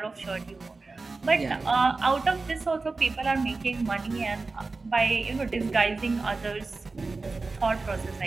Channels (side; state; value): left; quieter; 3.8 dB